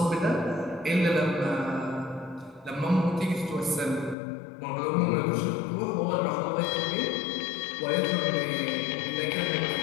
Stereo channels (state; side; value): drops out; right; at 4.2 s